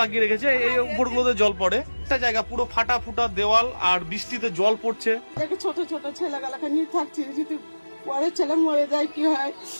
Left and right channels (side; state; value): both; inverted; correlation -1.00